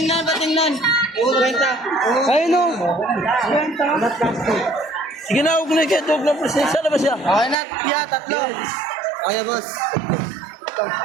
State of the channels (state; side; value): drops out; left; at 7.6 s